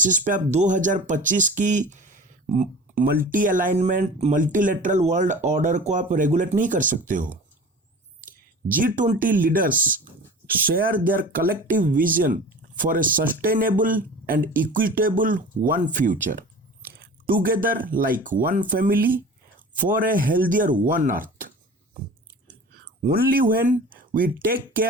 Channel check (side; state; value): both; normal; correlation 0.39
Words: पे आप 2025 की multi alignment, multilateral world order को आप रेगुलेट नहीं कर सकते हो। G20 leaders share their collective vision for a sustainable and equitable one future, together like one family for a healthier one earth. Only when we take